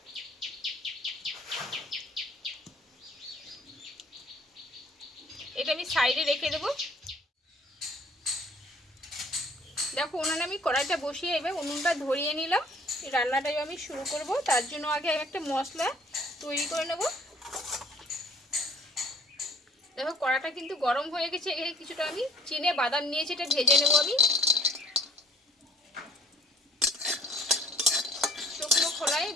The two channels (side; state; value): both; normal; correlation 0.54